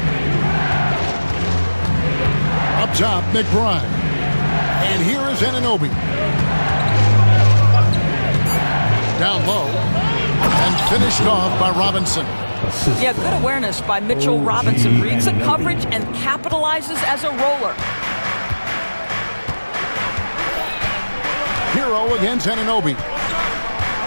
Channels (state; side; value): inverted; both; correlation -1.00